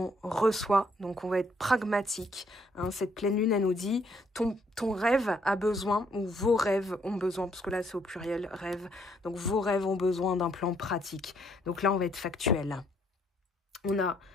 reçoit. Donc on va être pragmatique. Hein. Cette pleine lune, elle nous dit, ton rêve a besoin, ou vos rêves ont besoin, parce que là c'est au pluriel, rêve. Donc vos rêves ont besoin d'un plan pratique. Donc là on va être factuel. On a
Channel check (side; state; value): both; normal; correlation 0.69